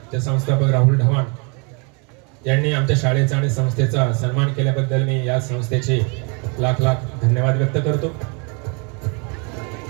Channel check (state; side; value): quieter; left; 33.7 dB